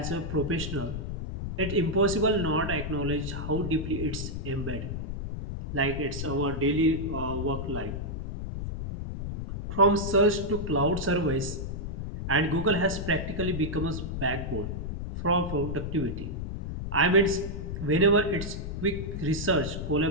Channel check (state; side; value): noise; left; rumble, 5 dB below the sound